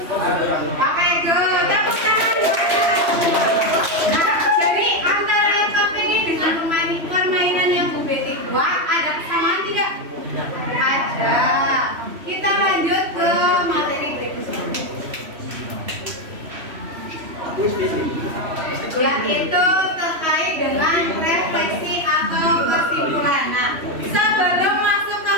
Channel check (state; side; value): late; left; 3.1 ms